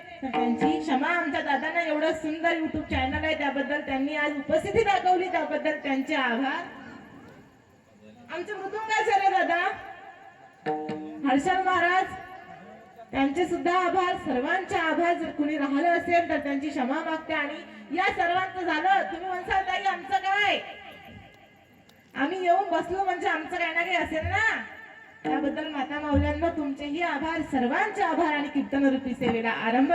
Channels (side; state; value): both; identical; correlation 1.00